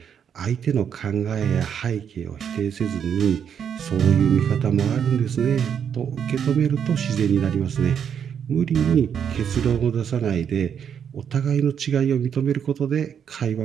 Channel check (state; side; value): quieter; left; 8.0 dB